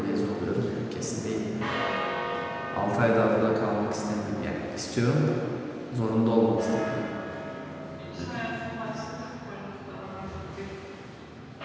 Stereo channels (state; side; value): identical; both; correlation 1.00